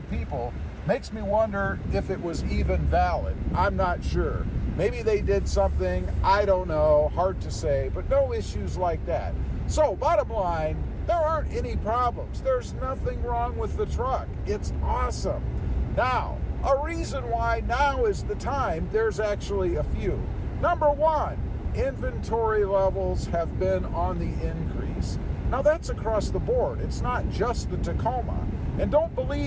people. Makes me wonder if it was even valid. I'm not sure. Maybe they did something, I don't know, hard to say, but no issues like that. So, bottom line, there aren't any problems. There's nothing wrong with the truck. It's awesome. Now, a reason why now is the time, there's actually a few. Number one, inventory levels have been on the increase. Now, that's across the board. It's not just the Tacoma. And don't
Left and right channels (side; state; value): both; identical; correlation 1.00